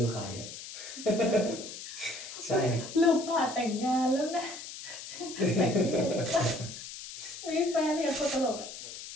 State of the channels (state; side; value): noise; left; hiss, 11 dB below the sound